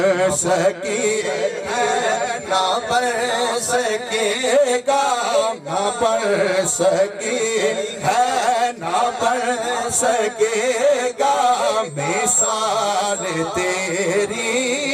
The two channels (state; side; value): identical; both; correlation 1.00